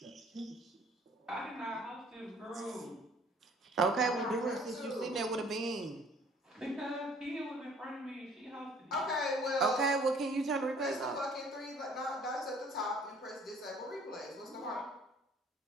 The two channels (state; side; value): normal; both; correlation 0.55